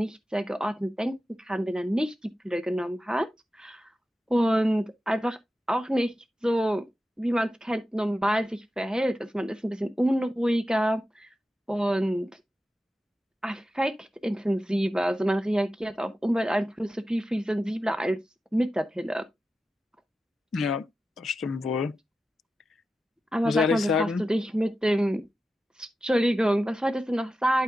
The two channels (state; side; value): normal; both; correlation 0.92